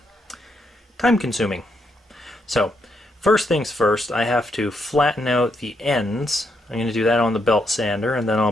time-consuming. So, first things first, I have to flatten out the ends. I'm going to do that on the belt sander, and then I'll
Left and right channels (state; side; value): normal; both; correlation 0.78